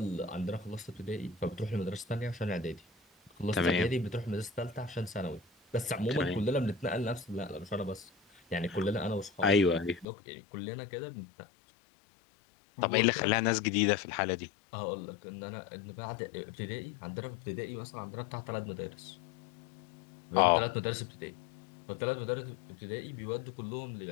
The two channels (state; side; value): drops out; right; at 10.1 s